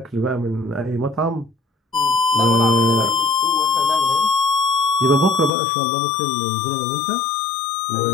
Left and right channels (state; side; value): drops out; right; at 5.5 s